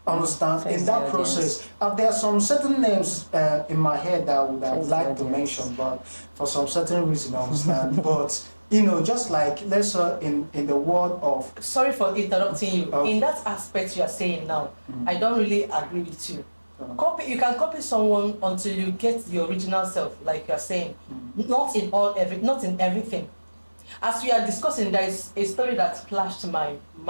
Understand? In that process, there are some certain names in my head that I would have liked to mention, but for some certain reason, I understand. But you know, just like, let's say in the world of... Sorry for interrupting you. In that aspect you are saying now, I don't really agree with you. You can copy someone until you get the original self, like you are saying. Not in everything. As we are discussing, there is a story that flashed my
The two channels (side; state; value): both; inverted; correlation -1.00